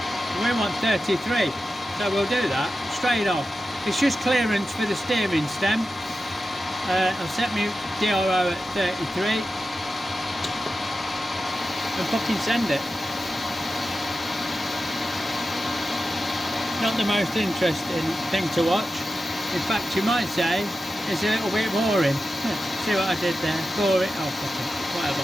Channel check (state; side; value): normal; both; correlation 0.92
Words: We want 33, so we'll do that straight off. It's just clearance for the steering stem. I've set my DRO at 33 and fucking send it. Not the most interesting thing to watch. In fact, you might say it's a little bit boring. See what I did there? Bore it. Oh, fuck it. Whatever.